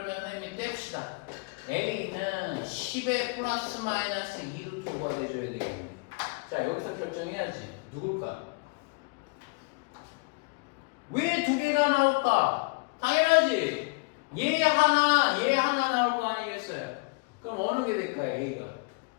선생님이 뗍시다. a는 10의 플러스 마이너스 2루트 5가 돼줘야 되겠네. 자, 여기서 결정해야지. 누굴까? 왜 두 개가 나올까? 당연하지. 얘 하나 나올 거 아니겠어요? 그럼 어느 게 될까요? A가?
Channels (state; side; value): quieter; right; 29.3 dB